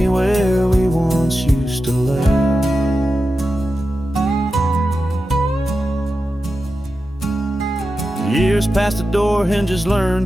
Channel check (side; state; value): both; normal; correlation 0.91